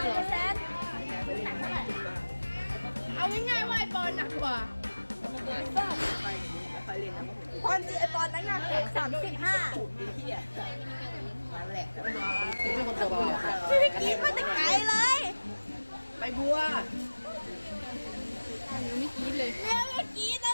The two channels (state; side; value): inverted; both; correlation -1.00